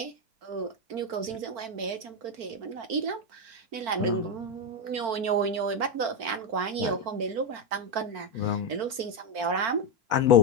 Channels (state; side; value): late; left; 4.4 ms